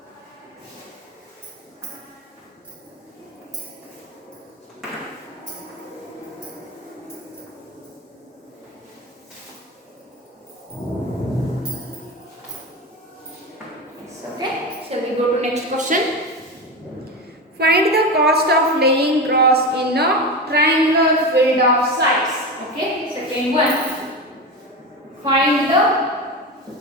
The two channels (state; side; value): normal; both; correlation 0.22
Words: Go to next question. Find the cost of laying grass in a triangular field of size. Okay, second one. Find the